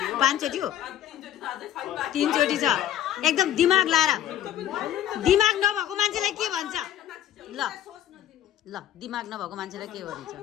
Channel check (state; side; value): quieter; right; 11.4 dB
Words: पाँचचोटी हो तीनचोटी छ एकदम दिमाग लाएर दिमाग नभएको मान्छेलाई के भन्छ ल ल दिमाग नभएको मान्छेलाई के भन्छ